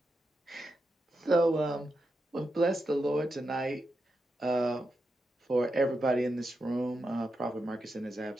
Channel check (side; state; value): both; normal; correlation 0.87